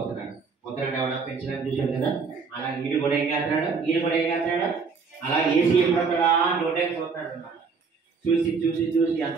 పొద్దున ఎవడో పెంచడానికి చూసాడు కదా, అలా ఈడు కూడా ఏం చేస్తున్నాడు, అలా ఏసీ ఎప్పుడొస్తాడా నోటే చూస్తున్నాడు అన్నమాట. చూసి చూసి చూసి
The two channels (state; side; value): quieter; left; 5.1 dB